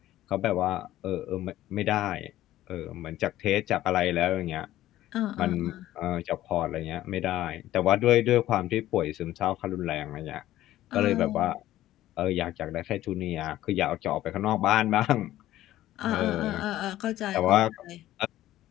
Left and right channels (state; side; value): quieter; right; 14.3 dB